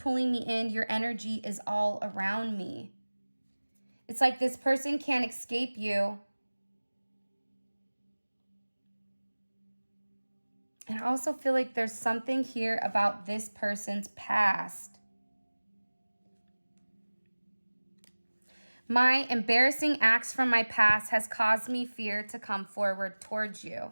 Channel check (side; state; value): both; inverted; correlation -1.00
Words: me in. Your energy is all around me. It's like this person can't escape you. And I also feel like there's something here about this person's past. My embarrassing acts from my past has caused me fear to come forward towards